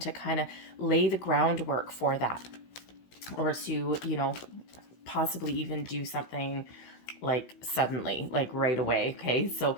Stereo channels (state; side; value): late; right; 16 ms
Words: kind of lay the groundwork for that, or to, possibly even do something like suddenly, like right away. Okay, so